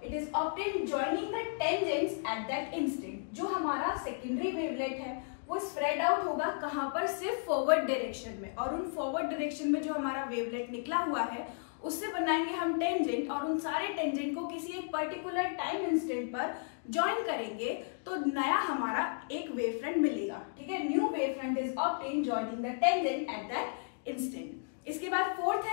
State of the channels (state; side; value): silent; right; digital silence